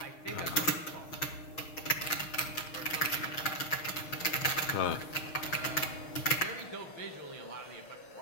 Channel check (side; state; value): right; late; 6.3 ms